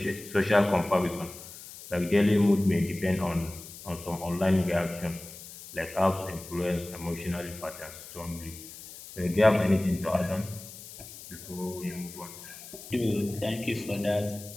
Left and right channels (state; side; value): noise; left; hiss, 15 dB below the sound